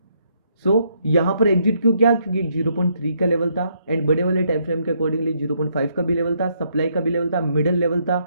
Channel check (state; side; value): inverted; both; correlation -0.73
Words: सो यहाँ पर एग्जिट क्यों किया, क्योंकि 0.3 का लेवल था, एंड बड़े वाले टाइम फ्रेम के अकॉर्डिंगली 0.5 का भी लेवल था, सप्लाई का भी लेवल था, मिडल लेवल था,